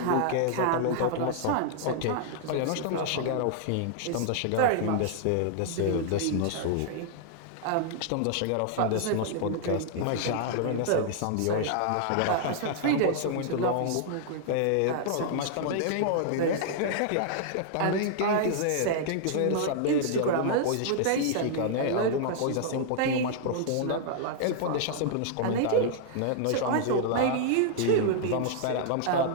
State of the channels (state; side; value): different; both; correlation -0.01